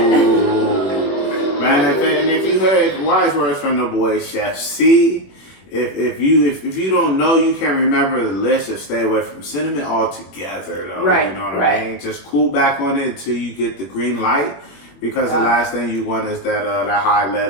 Man, and if you heard wise words from the boy Chef C, if you don't know, you can't remember the list, just stay away from cinnamon altogether, though. Right. You know what I mean? Just cool back on it until you get the green light. Because the last thing you want is that high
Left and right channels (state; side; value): late; right; 21 ms